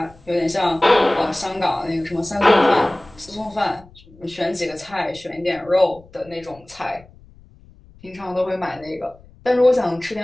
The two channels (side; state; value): left; noise; rumble, 25 dB below the sound